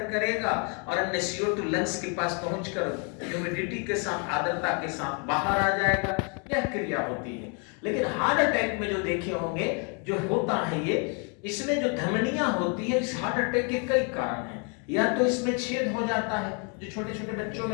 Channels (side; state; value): right; quieter; 36.5 dB